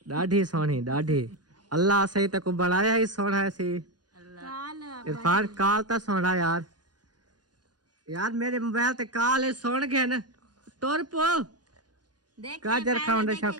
डाढ़ी सोनी डाढ़ी। अल्लाह सही तक बनाया ही सोना है सी इरफान, काल तो सोना यार मेरे मोबाइल ते काल है सोन गया ना तोर पो। गाजर खाने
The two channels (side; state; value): left; late; 0.69 ms